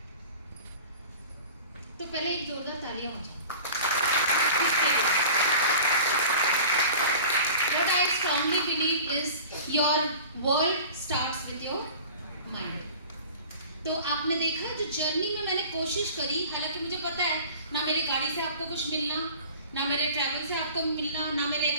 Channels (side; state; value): both; inverted; correlation -0.40